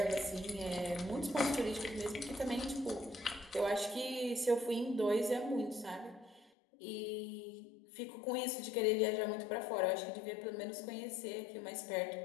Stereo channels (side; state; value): right; drops out; at 6.5 s